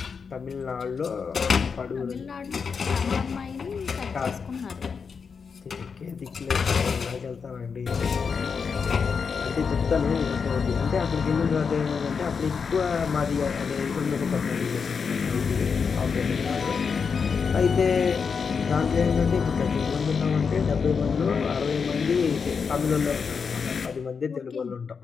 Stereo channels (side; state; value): right; quieter; 5.8 dB